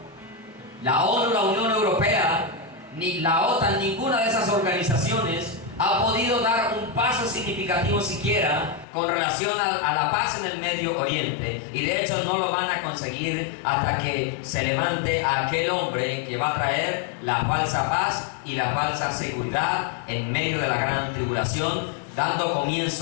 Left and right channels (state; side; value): drops out; right; at 8.8 s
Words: La ONU, la Unión Europea, ni la OTAN, ninguna de esas organizaciones ha podido dar un paso significativo siquiera con relación a la paz en el Medio Oriente, y de hecho no lo van a conseguir hasta que se levante aquel hombre que va a traer la falsa paz y la falsa seguridad en medio de la gran tribulación, dando